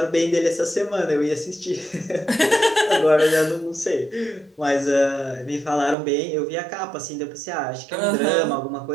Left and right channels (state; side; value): drops out; left; at 6.0 s